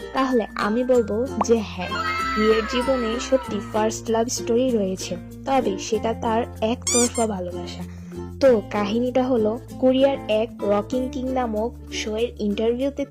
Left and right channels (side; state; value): both; identical; correlation 1.00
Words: তাহলে আমি বলবো যে হ্যাঁ, ভিয়ের জীবনে সত্যি ফার্স্ট লাভ স্টোরি রয়েছে, তবে সেটা তার একতরফা ভালোবাসা। তো কাহিনীটা হলো, কোরিয়ার এক রকিং কিং নামক শো এর ইন্টারভিউতে